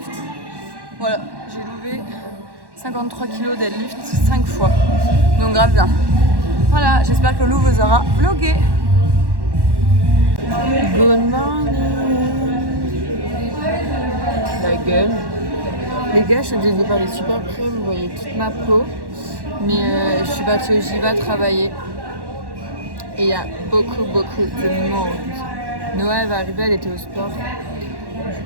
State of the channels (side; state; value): left; late; 1.1 ms